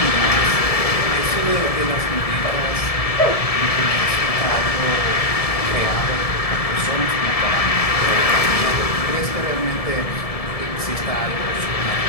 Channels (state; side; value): late; right; 1.7 ms